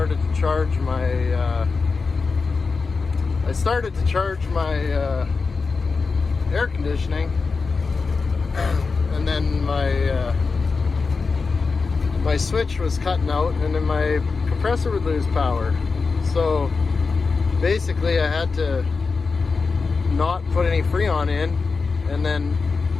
to charge my air conditioning, and then my switch was cutting out and then my compressor would lose power. So basically I had to not put any Freon in, and then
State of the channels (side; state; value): right; quieter; 4.5 dB